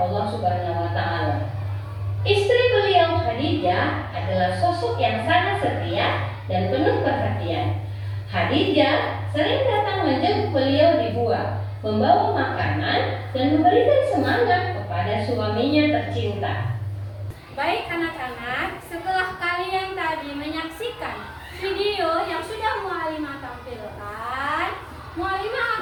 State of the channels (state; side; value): identical; both; correlation 1.00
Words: Subhanahu wa Ta'ala. Istri beliau Khadijah adalah sosok yang sangat setia dan penuh perhatian. Khadijah sering datang menjenguk beliau di gua, membawa makanan dan memberikan semangat kepada suaminya tercinta. Baik anak-anak, setelah kalian tadi menyaksikan video yang sudah Mualimah tampilkan, Mualimah